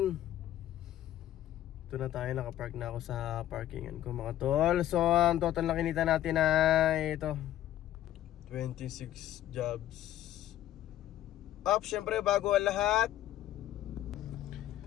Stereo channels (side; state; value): right; quieter; 12.9 dB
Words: Dito na tayo, nakapark na ako sa parkingan ko mga tol. So ang total na kinita natin ay ito 26 jobs. Syempre bago ang lahat,